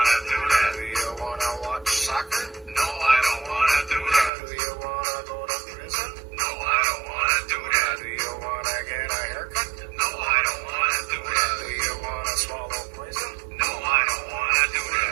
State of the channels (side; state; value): left; drops out; at 4.3 s